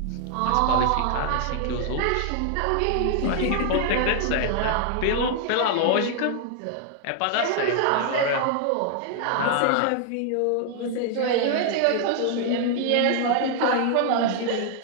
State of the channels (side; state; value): both; different; correlation 0.00